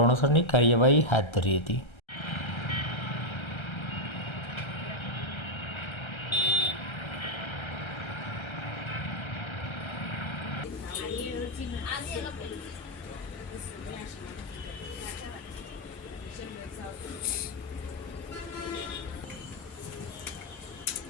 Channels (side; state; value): right; late; 1.3 ms